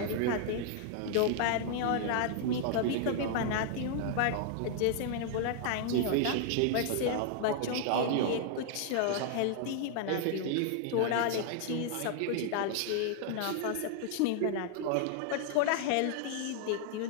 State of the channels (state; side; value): different; both; correlation 0.00